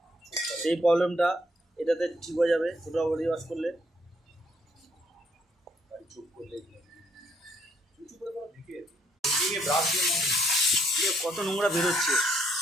সেই প্রবলেমটা এটাতে ঠিক হয়ে যাবে টোটাল বডি ওয়াশ করলে। চুপ করলে ব্রাশ দিয়ে কত নোংরা বেরোচ্ছে,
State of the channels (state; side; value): normal; both; correlation 0.69